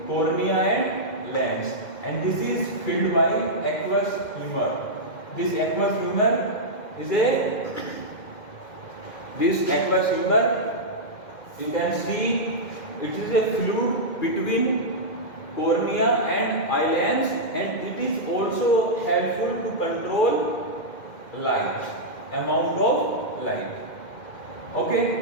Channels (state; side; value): late; right; 2.1 ms